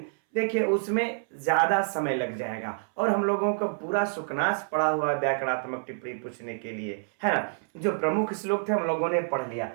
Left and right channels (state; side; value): silent; left; 60 dB below the other